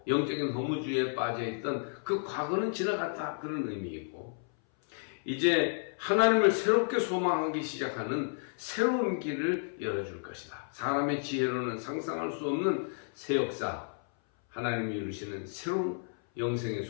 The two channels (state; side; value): silent; right; 57 dB below the other